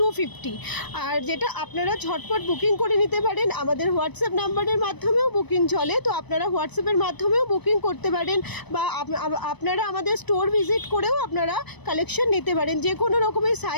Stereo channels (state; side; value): late; right; 1.0 ms